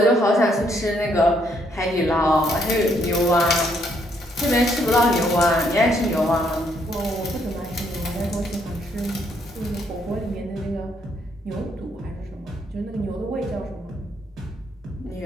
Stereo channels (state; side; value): normal; both; correlation 0.71